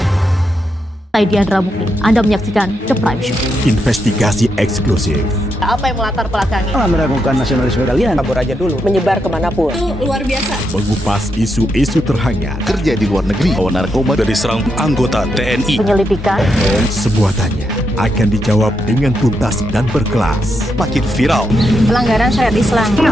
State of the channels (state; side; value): normal; both; correlation 0.82